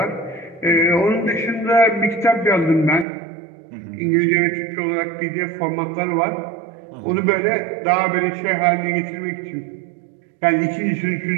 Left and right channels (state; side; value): drops out; left; at 3.1 s